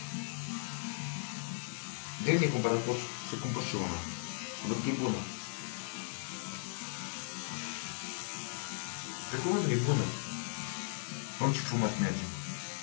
De bine cumpărat, pot să cumpăr și una. Văd că e bună. Pe cuvântul e bună. Om, ce frumos merge.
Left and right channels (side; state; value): right; silent; 53 dB below the other